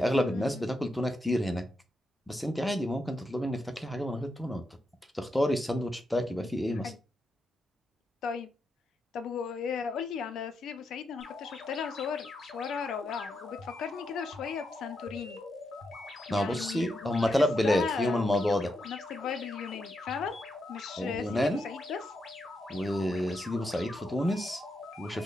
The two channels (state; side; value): normal; both; correlation 0.84